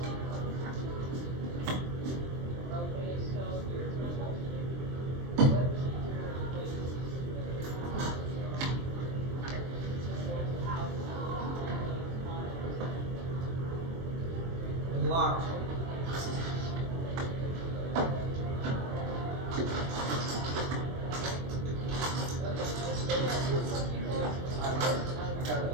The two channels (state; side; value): late; left; 23 ms